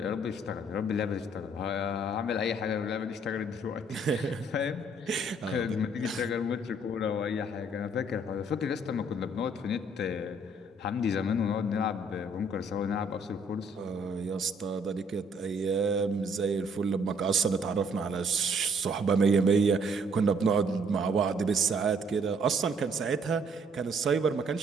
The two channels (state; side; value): normal; both; correlation 0.63